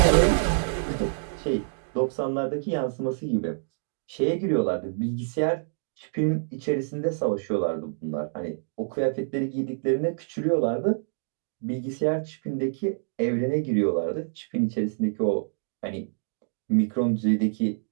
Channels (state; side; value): silent; left; digital silence